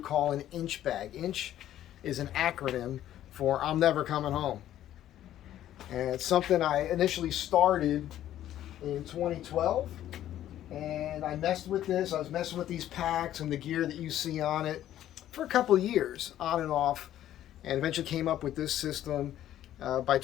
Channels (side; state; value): right; quieter; 12.3 dB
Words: call an inch bag. Inch is an acronym for I'm never coming home. And it's something I initially started in 2012. And I messed with this. I was messing with these packs and the gear that you see on it for a couple of years, on and off. And eventually came up with this system by